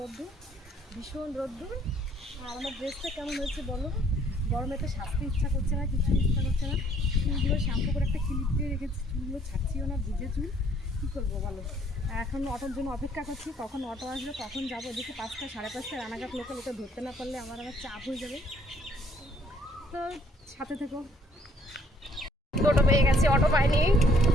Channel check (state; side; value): normal; both; correlation 0.63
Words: রোদ্দুর, ভীষণ রোদ্দুর। আর আমার ড্রেসটা কেমন হয়েছে বলো? গরমে তো সাজতে ইচ্ছা করছে না, কিছু ইচ্ছা করছে না। চুলগুলো শ্যাম্পু করে একটা ক্লিপ দিয়ে রেখেছি, চুলগুলো ছাড়ছিও না, ভিজে চুল, কী করবো বলো? এখন অটোর জন্য অপেক্ষা করছি, কখন অটো আসবে, কখন যাবো। এদিকে 5টা 5:30 রানাঘাট লোকাল, ওকে ধরতে না পারলে আমার চাপ হয়ে যাবে। তো সাথে থেকো। টোটো পেয়ে গেছি, অটো পাইনি।